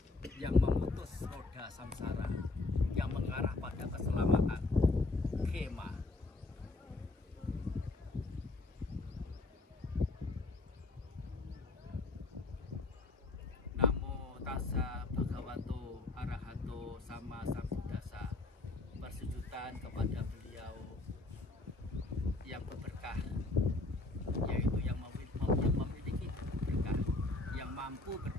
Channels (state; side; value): quieter; right; 3.1 dB